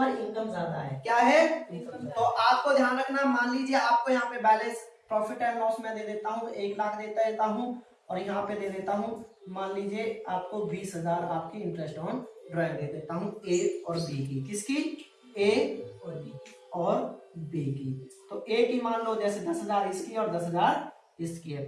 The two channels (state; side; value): identical; both; correlation 1.00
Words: इनकम ज्यादा है, क्या है, तो आपको ध्यान रखना। मान लीजिए आपको यहाँ पे बैलेंस प्रॉफिट एंड लॉस में दे देता हूँ, 1 लाख देता हूँ, और यहाँ पे दे देता हूँ मान लीजिए आपको 20,000 आपकी इंटरेस्ट ऑन ड्राइंग दे देता हूँ ए और बी की, किसकी, ए और बी की। तो ए की मान लो जैसे 10,000 इसकी और 10,000 इसकी है,